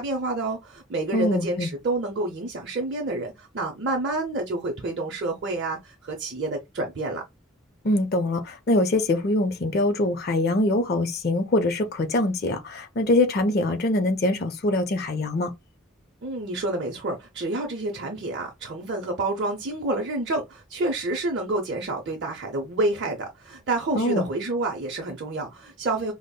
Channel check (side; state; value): both; normal; correlation 0.31